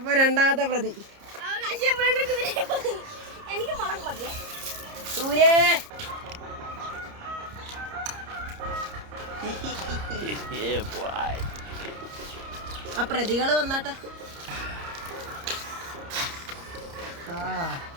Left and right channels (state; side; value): late; left; 30 ms